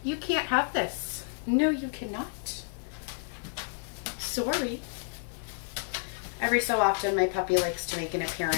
You can't have this. No, you cannot. Sorry. Every so often, my puppy likes to make an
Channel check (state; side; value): silent; right; digital silence